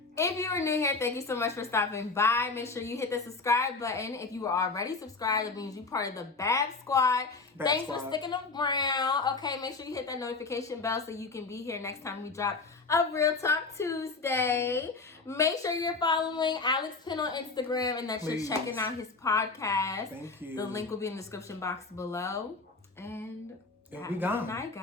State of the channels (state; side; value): quieter; right; 4.0 dB